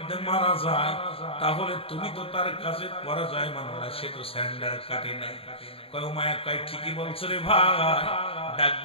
মারা যায় তাহলে তুমি তো তার কাছে পরাজয় মানো না সে তো স্যান্ডার কাটে নাই কয় উমাইয়া কয় ঠিকই বলছো রে ভাই ডাক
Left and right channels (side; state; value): right; late; 0.27 ms